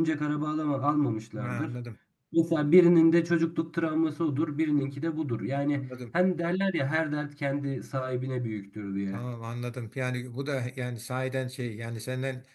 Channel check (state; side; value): identical; both; correlation 1.00